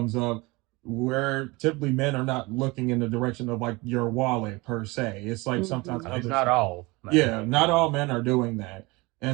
up, where typically men are not looking in the direction of your wallet per se. It's sometimes It's not all. Man. Yeah, not all men are doing that.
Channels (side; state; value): left; quieter; 24.0 dB